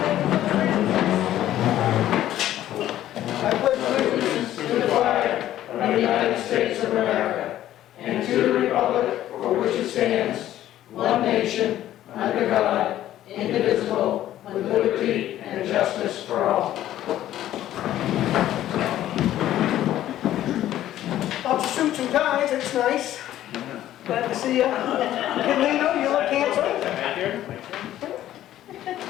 I pledge allegiance to the flag of the United States of America and to the republic for which it stands, one nation, under God, indivisible, with liberty and justice for all. Lots of suits and ties, it's nice. Glad to see you. Hey, Lino, you look handsome.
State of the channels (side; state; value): right; quieter; 12.9 dB